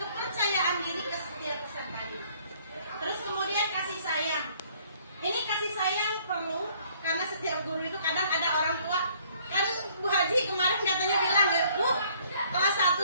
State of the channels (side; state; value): both; inverted; correlation -0.61